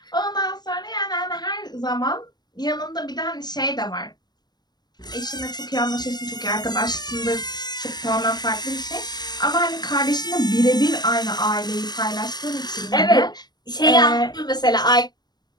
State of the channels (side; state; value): right; late; 0.20 ms